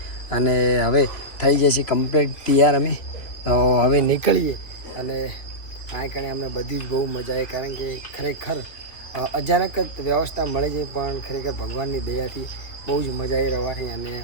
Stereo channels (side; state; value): right; late; 3.1 ms